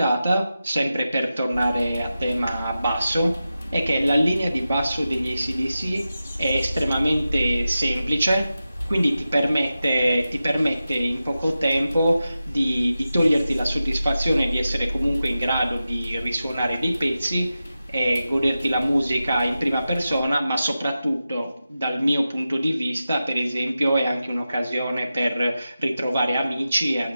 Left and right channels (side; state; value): both; inverted; correlation -0.92